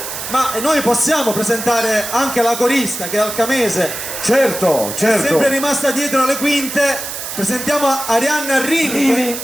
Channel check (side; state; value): right; noise; hiss, 7 dB below the sound